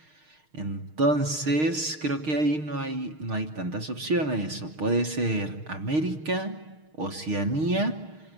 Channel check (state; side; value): late; left; 6.5 ms